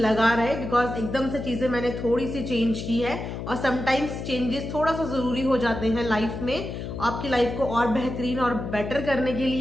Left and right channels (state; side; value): noise; left; hum, 7 dB below the sound